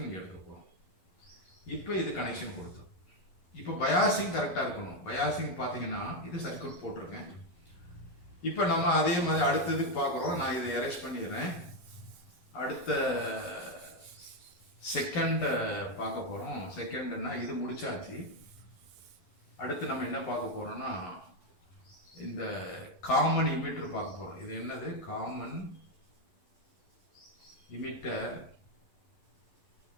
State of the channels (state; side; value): late; right; 11 ms